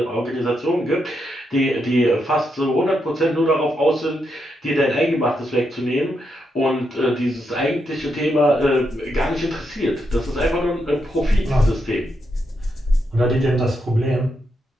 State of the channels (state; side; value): normal; both; correlation 0.82